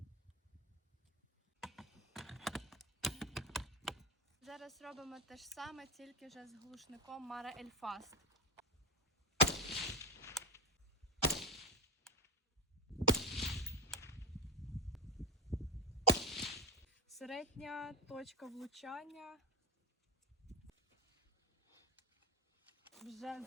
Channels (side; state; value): both; normal; correlation 0.16